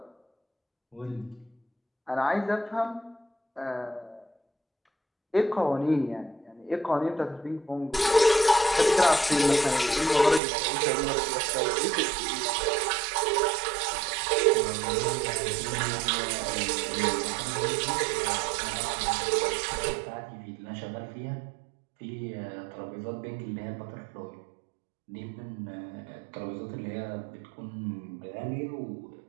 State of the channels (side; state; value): left; drops out; at 10.4 s